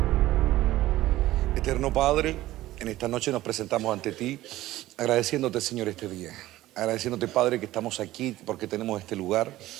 Eterno Padre, en esta noche nos presentamos ante ti, agradeciéndote, Señor, este día. Agradeciéndote, Padre, que estamos aquí porque tenemos este lugar.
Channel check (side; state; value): left; quieter; 15.9 dB